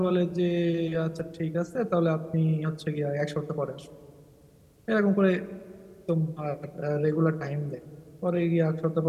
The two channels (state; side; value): identical; both; correlation 1.00